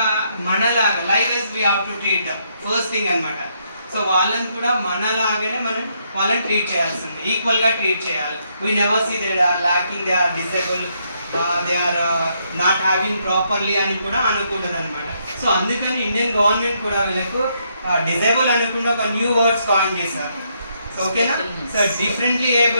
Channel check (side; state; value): both; inverted; correlation -0.75